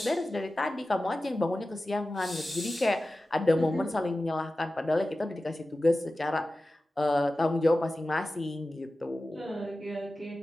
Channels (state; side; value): normal; both; correlation 0.95